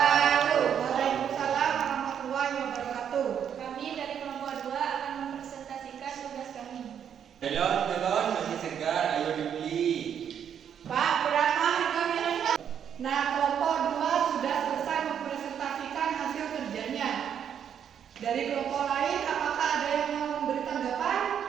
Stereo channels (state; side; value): quieter; left; 8.6 dB